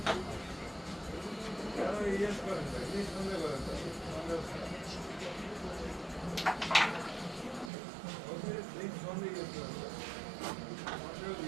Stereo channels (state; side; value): drops out; left; at 7.7 s